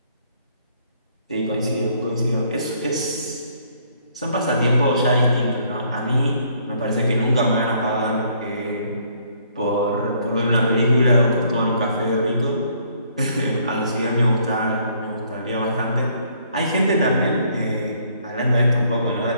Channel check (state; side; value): inverted; both; correlation -0.65